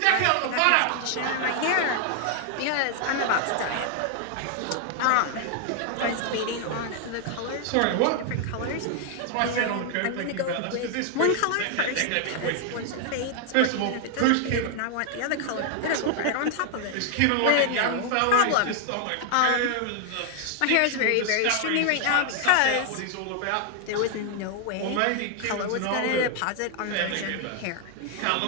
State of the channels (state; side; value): different; both; correlation 0.00